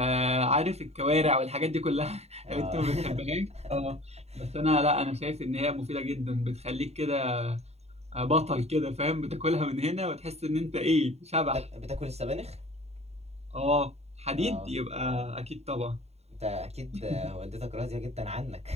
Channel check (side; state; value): left; late; 0.31 ms